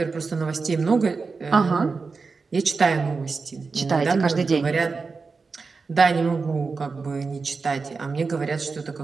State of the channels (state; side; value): quieter; left; 4.5 dB